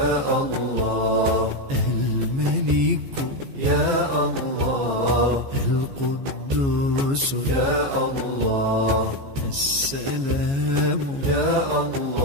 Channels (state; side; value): late; left; 15 ms